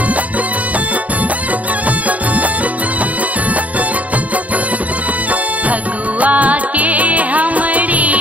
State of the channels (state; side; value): late; left; 0.070 ms